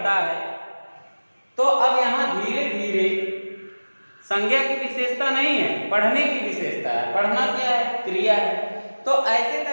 है, तो अब यहाँ धीरे धीरे संज्ञा की विशेषता नहीं है, पढ़ने की विशेषता है। पढ़ना क्या है? क्रिया है। तो ऐसे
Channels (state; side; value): inverted; both; correlation -1.00